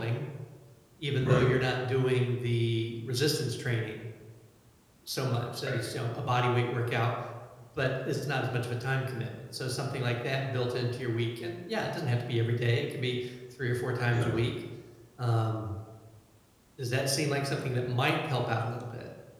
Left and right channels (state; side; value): identical; both; correlation 1.00